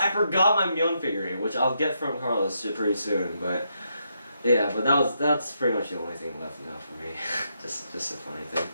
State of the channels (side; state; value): both; inverted; correlation -0.80